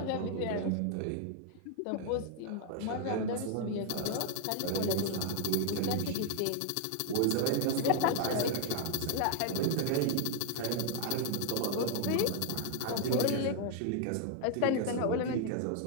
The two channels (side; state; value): both; different; correlation 0.00